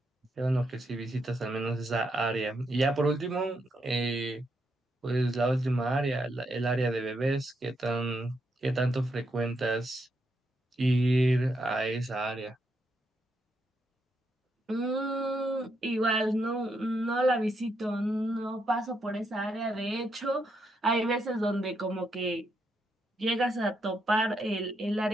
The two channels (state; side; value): normal; both; correlation 0.80